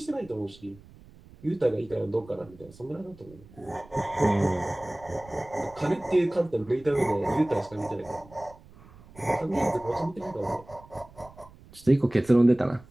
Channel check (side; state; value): right; noise; rumble, 23 dB below the sound